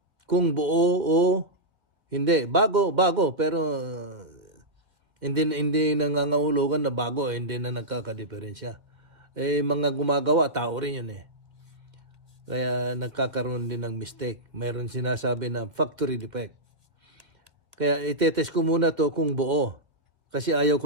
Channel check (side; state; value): left; late; 2.0 ms